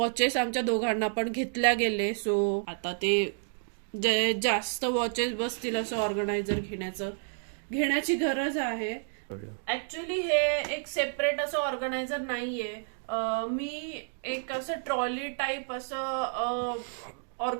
आमच्या दोघांना पण घेतल्या गेले. सो आता ते जे जास्त वॉचेस बसतील असं ऑर्गनायझर घेण्याची गरज आहे. ऍक्च्युली हे एक सेपरेट असं ऑर्गनायझर नाहीये. मी एक असं ट्रॉली टाईप असं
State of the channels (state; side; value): silent; left; digital silence